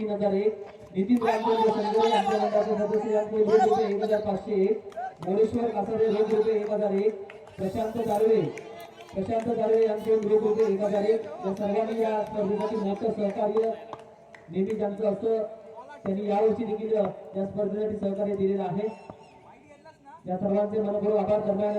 नितीन रामचंद्र संजय यांच्या मंडळाचे सदस्य यांच्याकडून रुपये 1500, मोरेश्वर कासारे रुपये 1001, प्रशांत दारवे यांच्याकडून रुपये 1001. या सर्वांनी या स्पर्धेसाठी मोठं सहकार्य नेहमी ज्यांचं असं त्यांनी यावर्षी देखील या स्पर्धेसाठी सहकार्य दिलेलं आहे. या सर्वांचे मनपूर्वक आभार. दरम्यान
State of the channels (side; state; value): both; identical; correlation 1.00